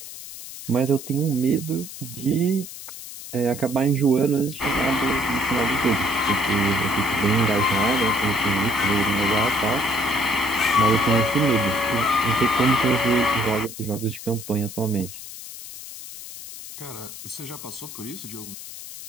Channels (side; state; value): left; noise; hiss, 12 dB below the sound